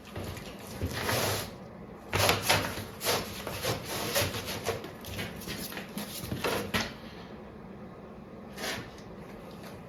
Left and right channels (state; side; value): identical; both; correlation 1.00